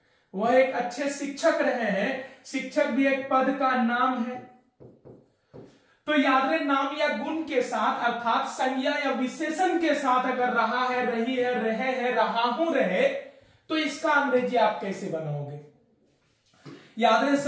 वह एक अच्छे शिक्षक रहे हैं। शिक्षक भी एक पद का नाम है। तो याद रहे, नाम या गुण के साथ अर्थात संज्ञा या विशेषण के साथ अगर रहा है, रही है, रहे हैं, रहा हूं, रहे, तो इसका अंग्रेजी आप कैसे बनाओगे? याद रहे,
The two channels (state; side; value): identical; both; correlation 1.00